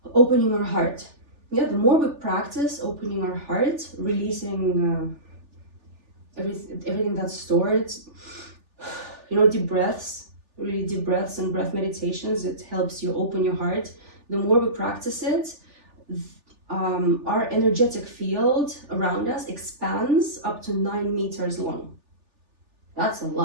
opening our heart. Yeah, the more we practice opening our heart, releasing everything that's stored, deep breaths, really deep breaths and breath meditations, it helps you open your heart. the more we practice it, our energetic field around us expands up to 9 meters long. That's a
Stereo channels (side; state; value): left; late; 3.4 ms